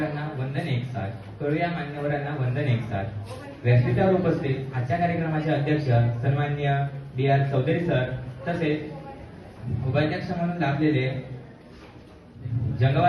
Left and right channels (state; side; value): identical; both; correlation 1.00